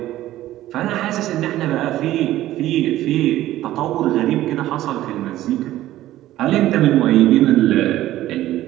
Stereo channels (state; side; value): quieter; left; 14.5 dB